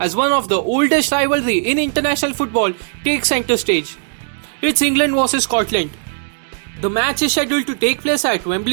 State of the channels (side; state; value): left; silent; digital silence